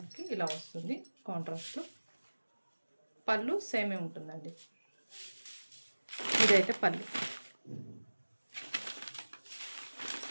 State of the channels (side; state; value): both; inverted; correlation -1.00